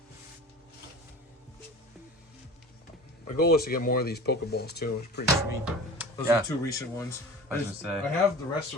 My goal is to get more of these Pokeballs too. It's pretty sweet. Those are the 2 recent ones. I was gonna say. I have the rest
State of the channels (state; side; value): normal; both; correlation 0.38